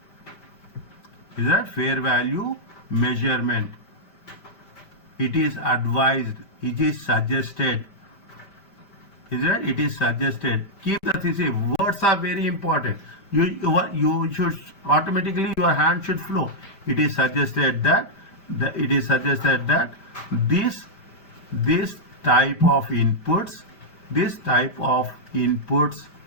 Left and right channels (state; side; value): late; right; 5.1 ms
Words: Is that fair value measurement? It is advised. It is suggested. Is that? It is suggested. Keep the thing. Words are very important. You should automatically, your hand should flow. It is suggested that this type of inputs